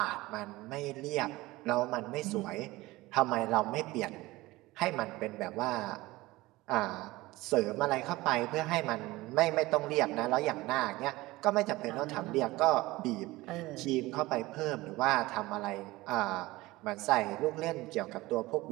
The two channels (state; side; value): quieter; left; 19.6 dB